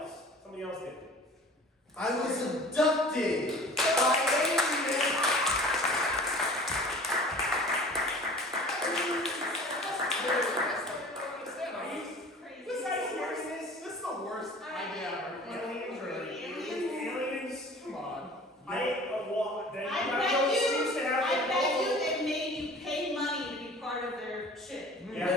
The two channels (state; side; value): normal; both; correlation 0.43